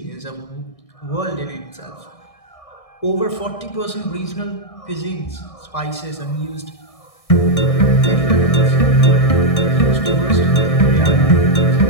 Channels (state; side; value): late; right; 1.6 ms